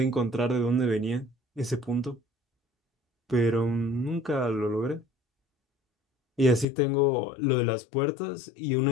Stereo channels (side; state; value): right; drops out; at 6.7 s